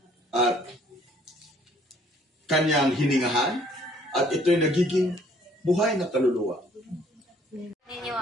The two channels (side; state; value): both; normal; correlation 0.61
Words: at kanyang hiningahan at ito'y nagiging buhay na kaluluwa. Ninyo